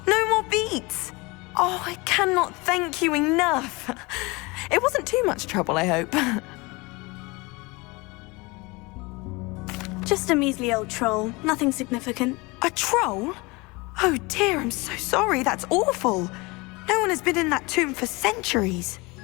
No more beats. Oh, I cannot thank you enough. It wasn't too much trouble, I hope. Just a measly old troll, nothing significant. A troll? Oh dear, I'm so sorry, that's awful. No one has been in that tomb for centuries.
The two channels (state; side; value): quieter; right; 25.2 dB